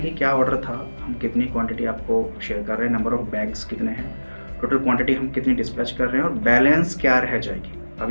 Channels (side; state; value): both; inverted; correlation -1.00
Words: कि क्या ऑर्डर था, हम कितनी क्वांटिटी आपको शेयर कर रहे हैं, नंबर ऑफ बैग्स कितने हैं, टोटल क्वांटिटी हम कितनी डिस्पैच कर रहे हैं और बैलेंस क्या रह जाएगी। अब